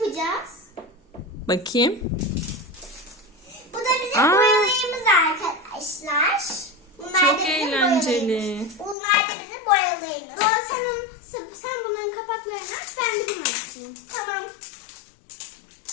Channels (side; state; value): right; drops out; at 9.0 s